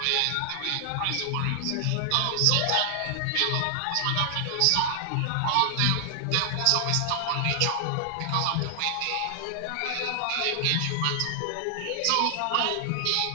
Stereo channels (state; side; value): different; both; correlation 0.00